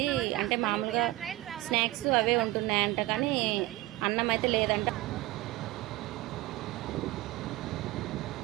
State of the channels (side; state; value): left; quieter; 18.6 dB